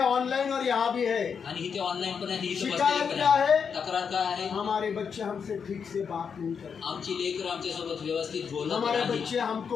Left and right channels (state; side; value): quieter; right; 6.5 dB